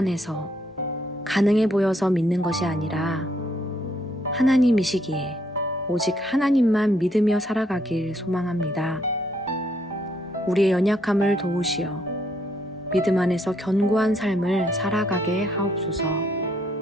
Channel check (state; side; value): normal; both; correlation 0.71